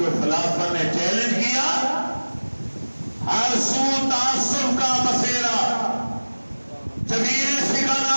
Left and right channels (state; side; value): inverted; both; correlation -1.00